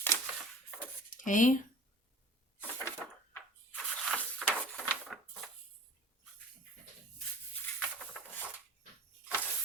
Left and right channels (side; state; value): both; normal; correlation 0.42